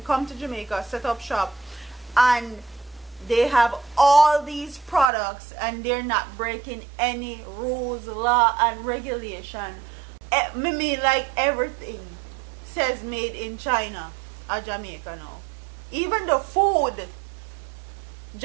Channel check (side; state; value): left; drops out; at 5.1 s